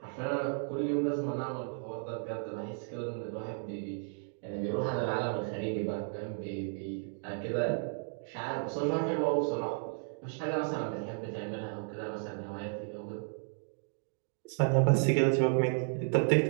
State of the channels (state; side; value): silent; left; 55 dB below the other